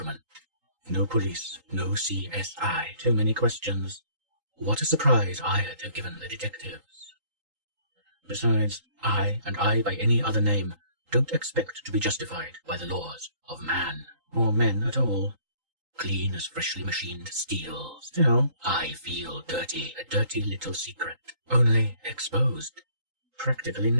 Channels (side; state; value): left; late; 3.8 ms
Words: No police, no CSI, too many questions. What a surprise I'd have given the detectives. Besides, I, and I by any other name, don't expect to be justified by the laws of man, or men at all. Clean as freshly machined steel. Still, I feel dirty, a dirty little secret, only exposed, practically